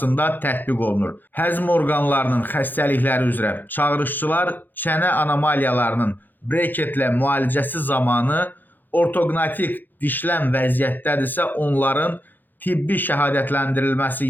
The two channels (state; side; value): late; right; 0.091 ms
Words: tətbiq olunur. Həzm orqanlarının xəstəlikləri üzrə çağırışçılar çənə anomaliyalarının breketlə müalicəsi zamanı ortoqnatik dişlən vəziyyətdədirsə, onların tibbi şəhadətləndirilməsi